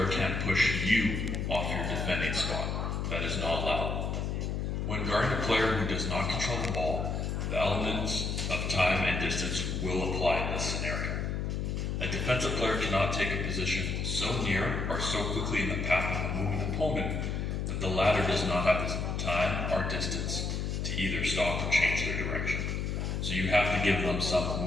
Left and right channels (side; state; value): left; noise; hum, 1 dB below the sound